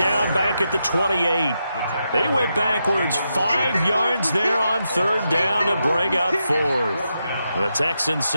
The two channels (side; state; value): both; inverted; correlation -0.85